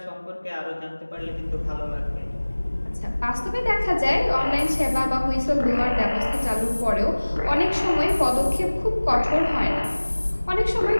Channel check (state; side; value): inverted; both; correlation -1.00